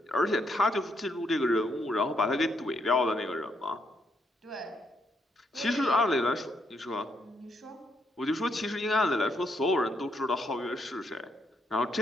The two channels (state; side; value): normal; both; correlation 0.76